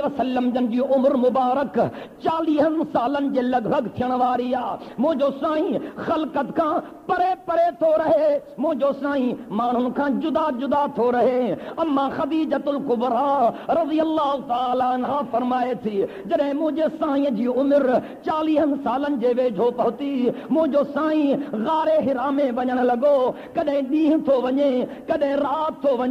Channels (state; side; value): identical; both; correlation 1.00